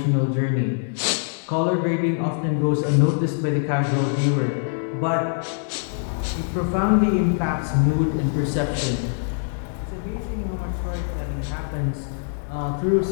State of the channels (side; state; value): right; silent; digital silence